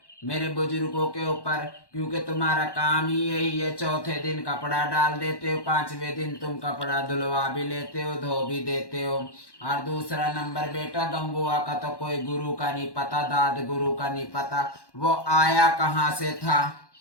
मेरे बुजुर्गों के ऊपर, क्योंकि तुम्हारा काम ही यही है। चौथे दिन कपड़ा डाल देते हो, पांचवें दिन तुम कपड़ा धुलवा भी लेते हो, धो भी देते हो। और दूसरा नंबर बेटा, गंगुआ का तो कोई गुरु का नहीं पता, दाद गुरु का नहीं पता। वो आया कहाँ से था,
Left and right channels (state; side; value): late; right; 1.1 ms